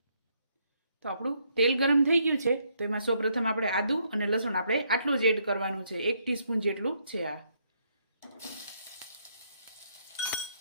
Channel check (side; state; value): both; inverted; correlation -0.73